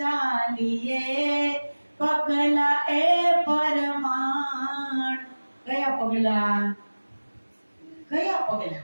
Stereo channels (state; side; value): inverted; both; correlation -1.00